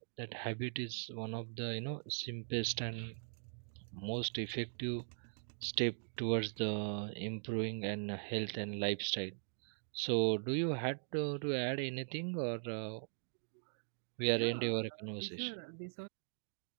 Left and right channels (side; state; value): left; silent; digital silence